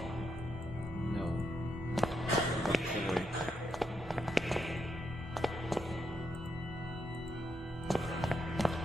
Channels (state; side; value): normal; both; correlation 0.81